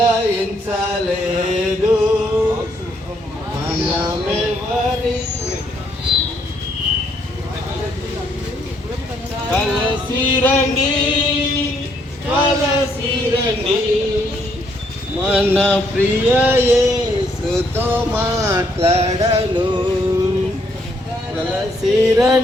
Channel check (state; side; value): normal; both; correlation 0.71